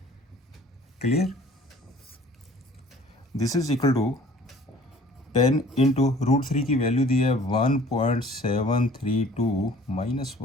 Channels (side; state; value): both; normal; correlation 0.51